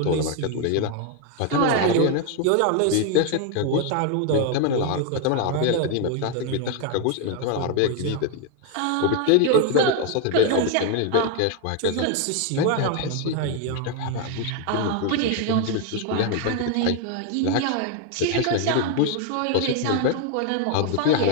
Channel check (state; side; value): different; both; correlation 0.01